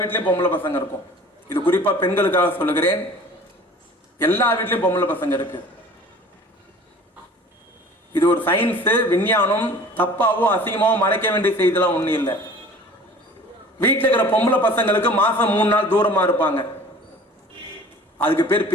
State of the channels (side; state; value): both; normal; correlation 0.45